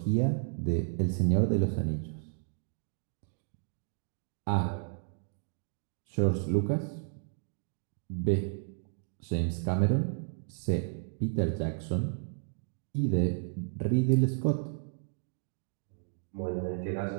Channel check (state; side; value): silent; left; digital silence